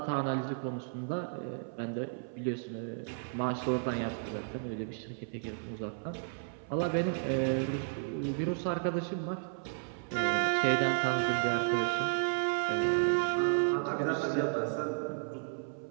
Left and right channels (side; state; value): left; silent; 56 dB below the other